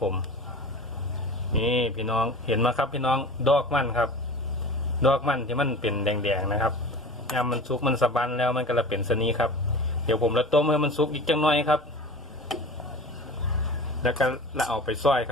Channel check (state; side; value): normal; both; correlation 0.36